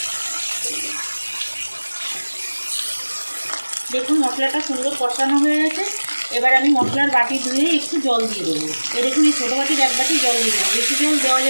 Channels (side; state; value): both; inverted; correlation -1.00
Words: দেখুন মশলাটা সুন্দর কষানো হয়ে গেছে। এবার আমি মশলার বাটি ধুয়ে একটু জল দিয়ে দেবো। এই দেখুন এই ছোটো বাটির 1 বাটি জল দিয়ে দেবো, বেশি জল দেওয়া